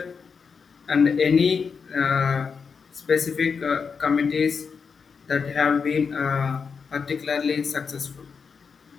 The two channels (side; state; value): right; quieter; 5.7 dB